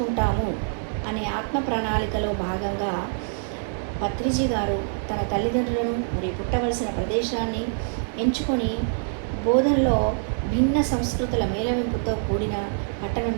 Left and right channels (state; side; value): silent; left; digital silence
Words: అనే ఆత్మ ప్రణాళికలో భాగంగా పత్రిజీ గారు తన తల్లిదండ్రులను మరియు పుట్టవలసిన ప్రదేశాన్ని ఎంచుకొని బోధనలో భిన్న సంస్కృతుల మేళవింపుతో కూడిన